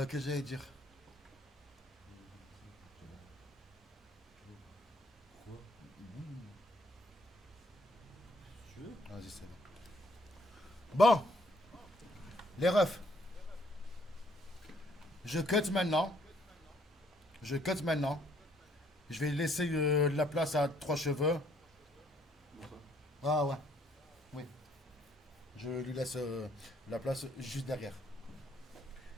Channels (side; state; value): both; normal; correlation 0.66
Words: que j'allais dire? Vas-y, c'est bon. Bon, les refs. Je cut maintenant. Je cut maintenant. Je vais laisser la place à 3 cheveux. Ah ouais. Oui. Je lui laisse la place juste derrière.